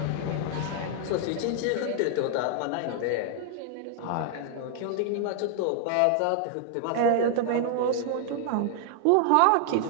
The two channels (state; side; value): different; both; correlation 0.00